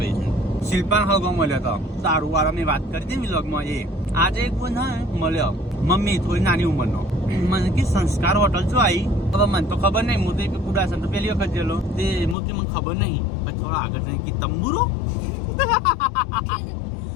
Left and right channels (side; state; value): right; drops out; at 12.4 s